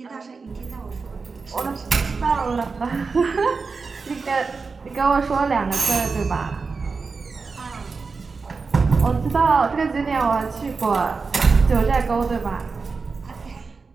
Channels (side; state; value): left; quieter; 4.6 dB